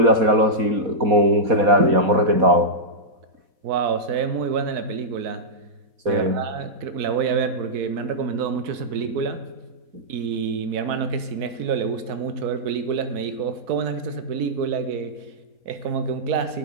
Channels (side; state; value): left; late; 4.6 ms